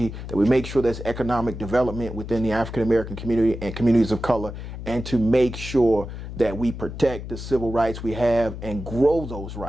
that we make sure there's economic development within the African-American community and communities of color, and to make sure that we protect the civil rights we have and grow those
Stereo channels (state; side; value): noise; left; hum, 9 dB below the sound